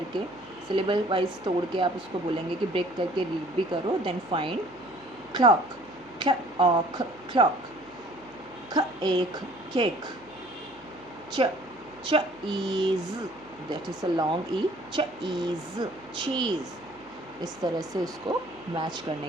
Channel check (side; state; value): right; noise; hum, 27 dB below the sound